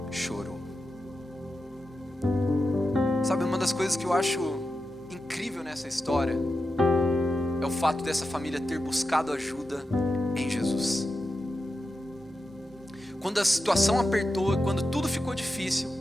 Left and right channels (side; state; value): both; normal; correlation 0.90